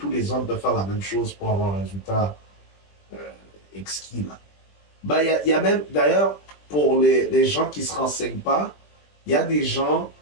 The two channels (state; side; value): late; right; 20 ms